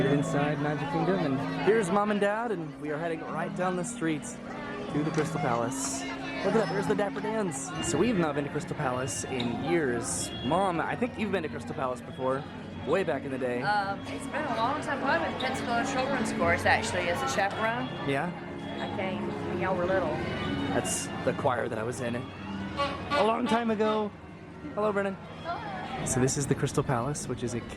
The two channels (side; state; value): both; identical; correlation 1.00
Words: it inside Magic Kingdom, and here's mom and dad, and we are heading right down the street to the Crystal Palace. Look at that, there's the Dapper Dans. So we've not been to Crystal Palace in years. Mom, I think you've been to Crystal Palace before. Way back in the day. It's been a long time. I went to Pensacola Children's Course actually as a chaperone. Yeah? I came when y'all were little. That's the choir that I was in a long time ago. Hello, Brennan. So this is the Crystal Palace, which is a